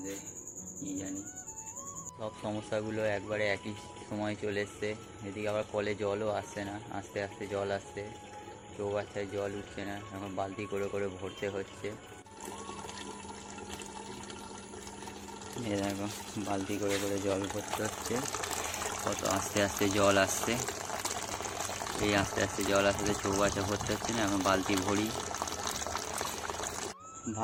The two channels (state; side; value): identical; both; correlation 1.00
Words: কী জানি। সব সমস্যাগুলো একবারে একই সময় চলে এসছে। এদিকে আবার কলে জলও আসছে না, আস্তে আস্তে জল আসছে, চৌবাচ্চায় জল উঠছে না, এখন বালতি করে করে ভরতে হচ্ছে। এ দেখো, বালতি করে করে জল ভরতে হচ্ছে। কত আস্তে আস্তে জল আসছে, এই আস্তে আস্তে জল আসতে চৌবাচ্চা ভরতে হচ্ছে না, এখন বালতি ভরি।